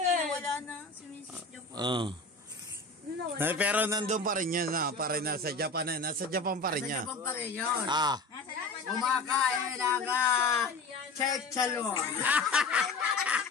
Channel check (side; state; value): right; quieter; 3.5 dB